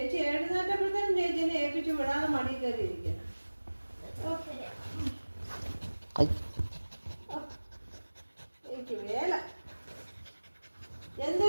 എഴുന്നേറ്റപ്പോഴത്തേനും ചേച്ചിനെ ഏൽപ്പിച്ചു വിടാതെ മടി കയറിയിരിക്കണം. എനിക്ക് വേല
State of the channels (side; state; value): both; inverted; correlation -1.00